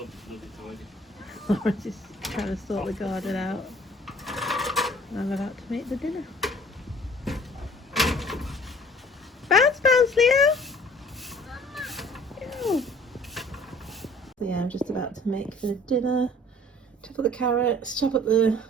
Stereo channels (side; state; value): both; normal; correlation 0.52